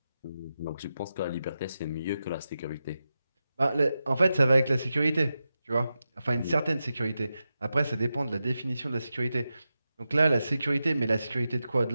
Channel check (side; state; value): both; inverted; correlation -0.90